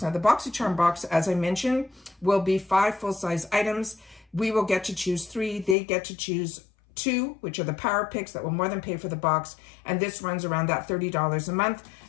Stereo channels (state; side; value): drops out; right; at 5.8 s